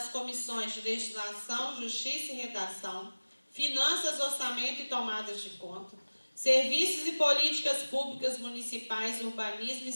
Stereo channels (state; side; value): inverted; both; correlation -1.00